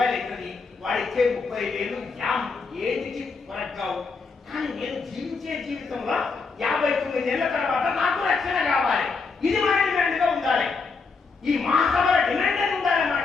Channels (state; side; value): quieter; right; 4.6 dB